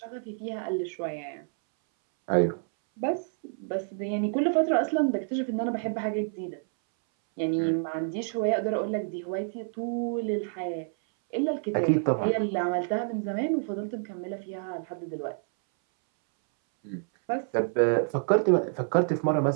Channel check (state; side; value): silent; left; 59 dB below the other